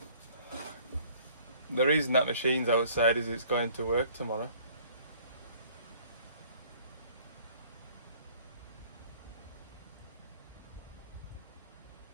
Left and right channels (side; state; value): both; inverted; correlation -0.54